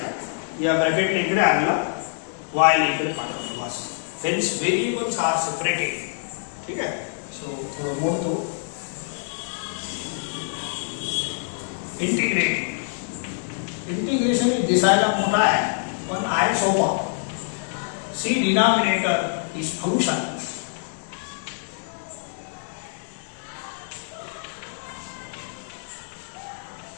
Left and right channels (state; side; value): silent; right; digital silence